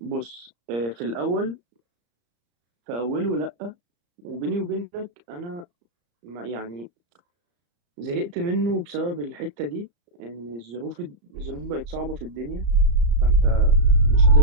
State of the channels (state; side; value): late; left; 34 ms